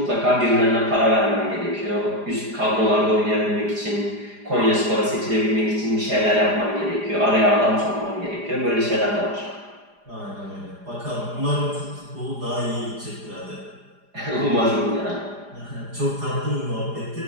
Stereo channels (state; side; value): late; left; 4.9 ms